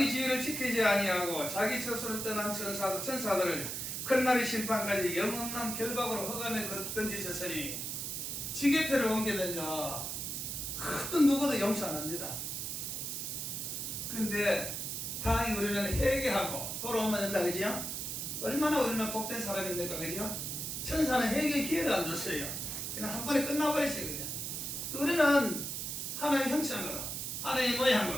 지위를 지키지 아니하고 자기 처소를 떠난 천사들을 큰날의 심판까지 영원한 결박으로 흑암에 던지셨으니 지게표를 옮기면요 어떤 누구도 용서 안 합니다. 근데 다행히 우리는 회개하고 돌아오면 된다, 그죠? 얼마나 우리는 복된 사람입니까, 그죠? 천사는 회개 기회를 안 줬어요. 그냥 한 번에 끝나버렸어요, 그냥. 우리는 하나님의 형상으로, 하나님의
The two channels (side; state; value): right; noise; hiss, 4 dB below the sound